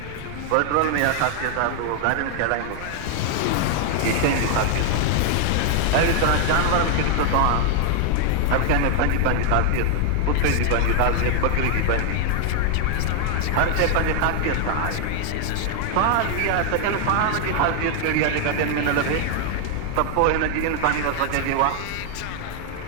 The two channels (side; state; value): both; different; correlation 0.00